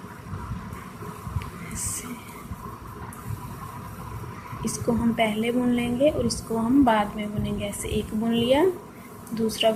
ऐसे। इसको हम पहले बुन लेंगे और इसको हम बाद में बुनेंगे। ऐसे एक बुन लिया, दूसरा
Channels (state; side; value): identical; both; correlation 1.00